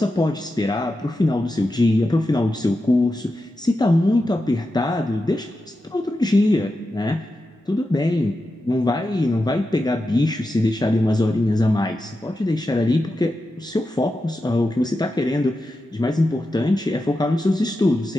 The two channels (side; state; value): both; normal; correlation 0.90